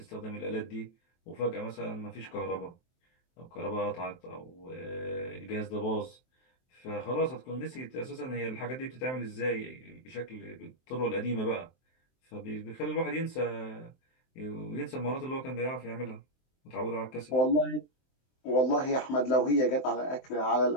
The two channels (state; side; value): late; right; 23 ms